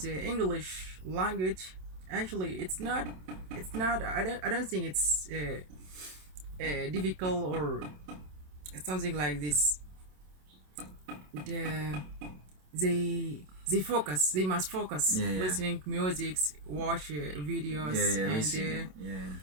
English language, actually, it's not. I don't think it's difficult or something like this. The they focus. They must focus. Yeah, yeah. Listening to music, watch Yeah, videos, yeah, and listen.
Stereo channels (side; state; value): left; late; 27 ms